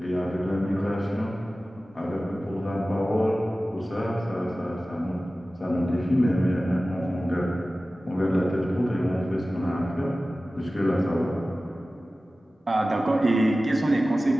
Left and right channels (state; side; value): normal; both; correlation 0.96